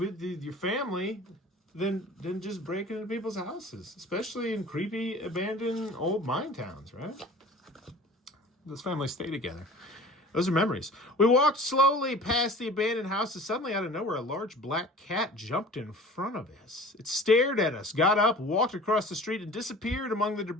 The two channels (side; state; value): both; normal; correlation 0.43